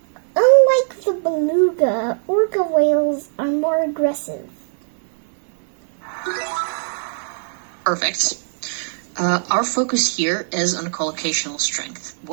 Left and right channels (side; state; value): left; silent; digital silence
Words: Unlike the beluga, orca whales are more aggressive. Perfect. Our focus here is on collocational strength.